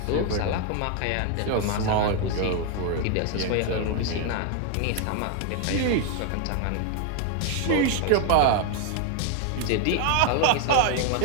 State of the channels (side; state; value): both; different; correlation 0.01